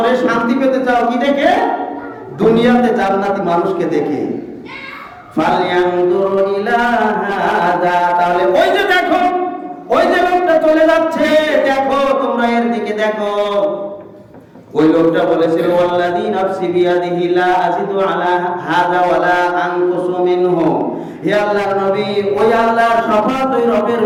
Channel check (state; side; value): identical; both; correlation 1.00